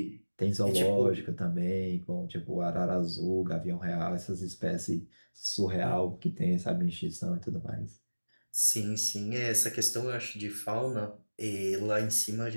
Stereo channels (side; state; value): both; inverted; correlation -1.00